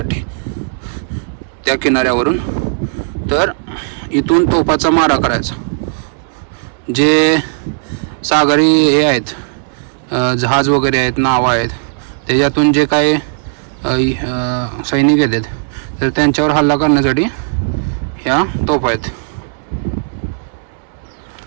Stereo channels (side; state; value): left; silent; 67 dB below the other